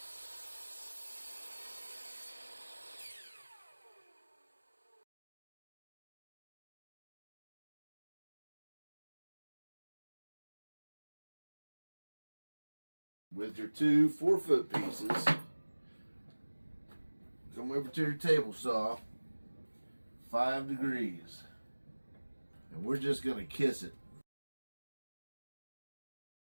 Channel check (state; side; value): inverted; both; correlation -1.00